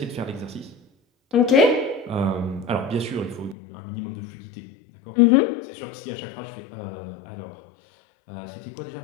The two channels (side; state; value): right; drops out; at 3.6 s